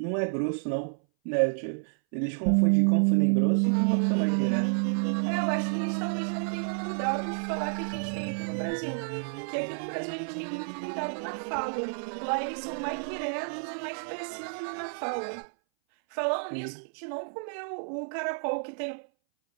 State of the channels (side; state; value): left; silent; 58 dB below the other